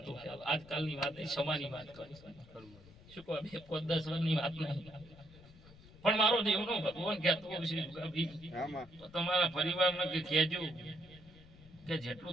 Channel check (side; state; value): left; noise; rumble, 21 dB below the sound